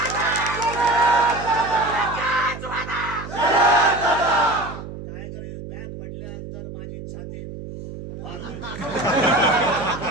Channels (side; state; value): right; noise; hum, 11 dB below the sound